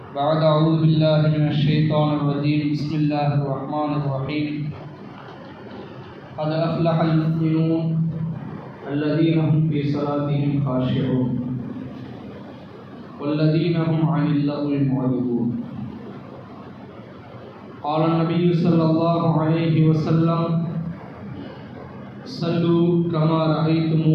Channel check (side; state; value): both; identical; correlation 1.00